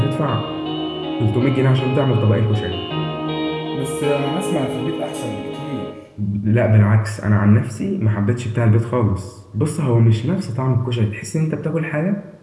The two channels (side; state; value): both; identical; correlation 1.00